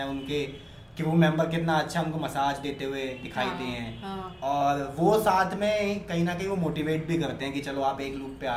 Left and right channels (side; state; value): both; identical; correlation 1.00